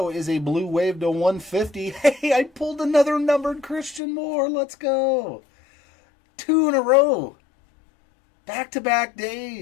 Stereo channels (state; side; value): drops out; right; at 4.0 s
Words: is a Blue Wave to 150. Hey, I pulled another numbered Christian Moore. Let's go. 2 in a row. Back-to-back